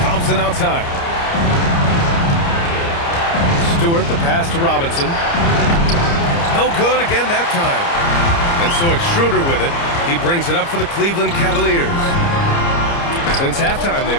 Thompson outside. Stewart, the pass to Robinson. No good again that time. And so it's Schroeder with it. He brings it up for the Cleveland Cavaliers. Since halftime,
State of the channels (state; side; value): late; right; 29 ms